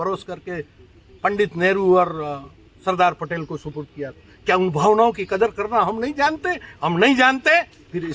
करके पंडित नेहरू और सरदार पटेल को सुपुर्द किया। क्या उन भावनाओं की कदर करना हम नहीं जानते? हम नहीं जानते, फिर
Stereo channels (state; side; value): identical; both; correlation 1.00